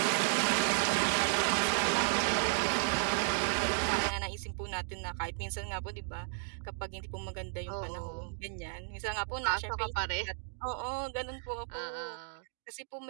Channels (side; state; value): left; silent; digital silence